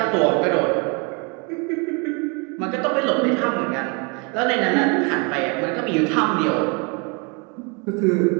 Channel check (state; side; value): quieter; left; 32.3 dB